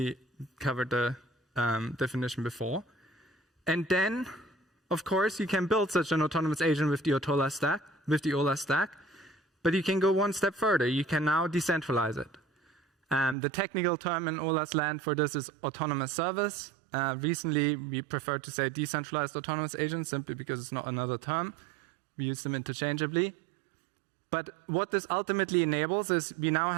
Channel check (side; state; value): left; drops out; at 13.4 s